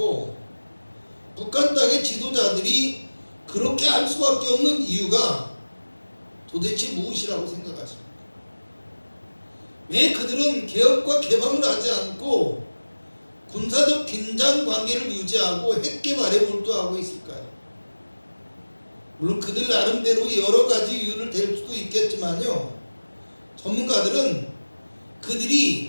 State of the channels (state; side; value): inverted; both; correlation -1.00